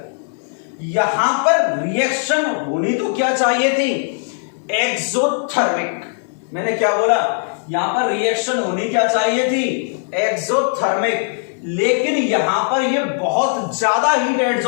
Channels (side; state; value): right; silent; digital silence